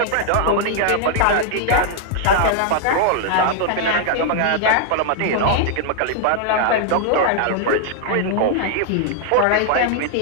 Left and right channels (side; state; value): both; different; correlation 0.00